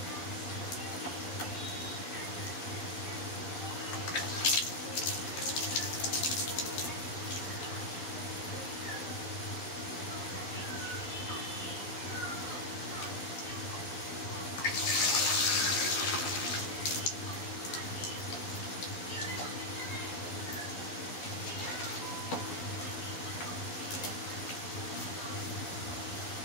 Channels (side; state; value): right; late; 12 ms